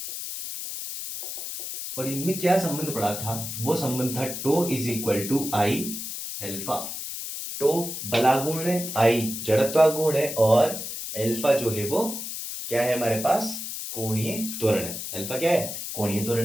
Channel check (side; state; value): left; noise; hiss, 6 dB below the sound